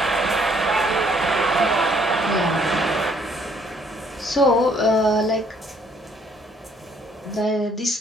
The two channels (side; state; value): both; normal; correlation 0.64